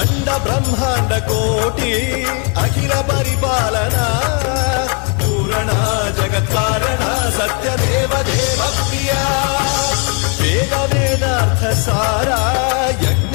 బ్రహ్మాండ కోటి అఖిల పరిపాలన పూరణ జగత్కారణ సత్యదేవ దేవ ప్రియ వేద వేదార్థ సారా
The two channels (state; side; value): quieter; right; 36.7 dB